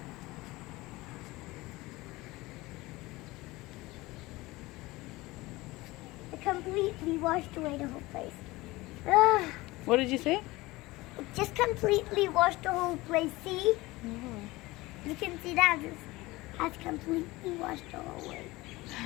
It completely washed away the whole place. Ugh. What did you say? It just completely washed the whole place. See? You can see that it has completely washed the whole way.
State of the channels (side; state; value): right; quieter; 20.5 dB